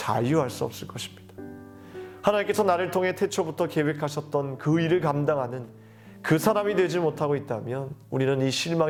수 없을 것입니다. 하나님께서 나를 통해 태초부터 계획하셨던 그 일을 감당하는 그 사람이 되지 못하고 있다면 우리는 이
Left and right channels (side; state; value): both; identical; correlation 1.00